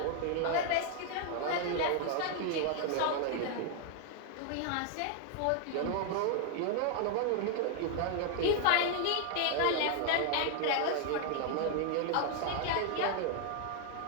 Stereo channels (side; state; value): both; different; correlation 0.00